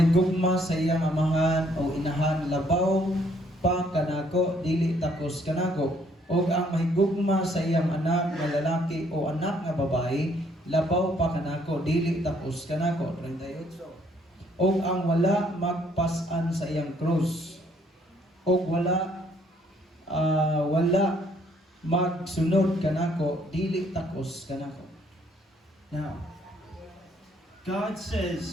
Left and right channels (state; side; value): normal; both; correlation 0.65